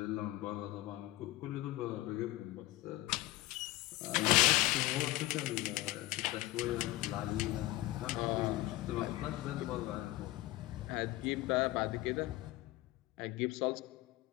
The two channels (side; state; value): right; quieter; 18.3 dB